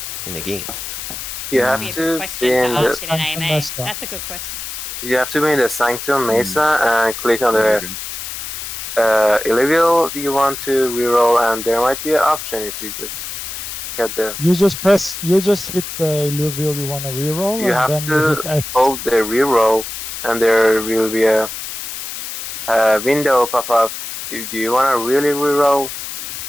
in the game? You That'd have be a to good be question in to the ask in an AMA. That's a good question. you have to be in the Sanctum Mesa and click on the Illuvial you want to reroll, and there might be an option if you just get the. You just hit the Illuvial you want to reroll, You and have then you hit to X. hold the reroll, and there will be a window pop up. Do you want to really reroll?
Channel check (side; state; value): left; noise; hiss, 8 dB below the sound